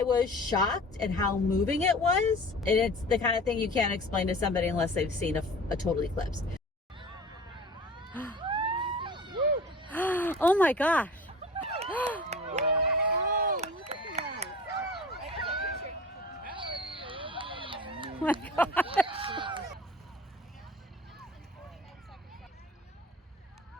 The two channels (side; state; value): both; normal; correlation 0.40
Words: was shocked at how moving it was. And it's the kind of thing you can't explain to somebody unless they've seen a total eclipse. Oh my gosh. Oh my gosh.